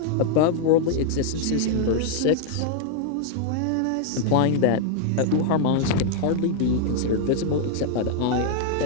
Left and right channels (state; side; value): different; both; correlation -0.01